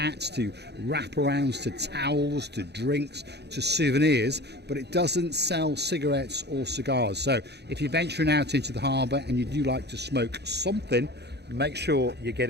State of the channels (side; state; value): left; late; 0.49 ms